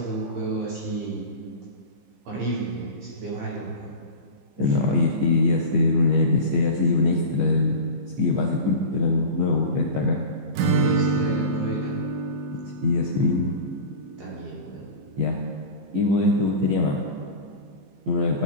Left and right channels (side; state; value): left; late; 15 ms